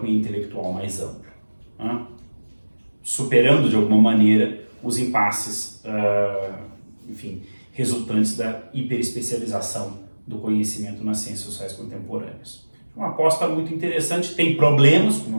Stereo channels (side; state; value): both; inverted; correlation -1.00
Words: e intelectual mais amplo, né? Superando de alguma maneira os impasses, resultantes da hiperespecialização do conhecimento nas ciências sociais contemporâneas. Uma aposta muito interessante, tem problemas, como